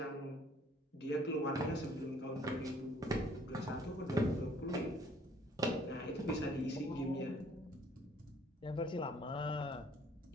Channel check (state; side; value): normal; both; correlation 0.59